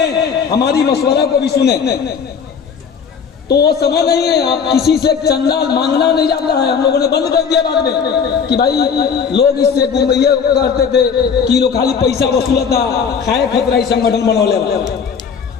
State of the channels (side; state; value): right; quieter; 6.5 dB